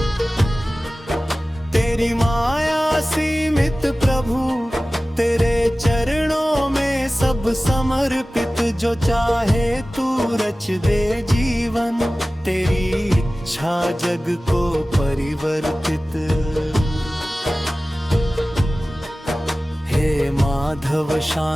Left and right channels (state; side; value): normal; both; correlation 0.97